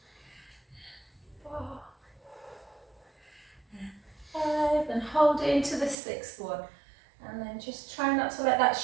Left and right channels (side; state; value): left; drops out; at 6.0 s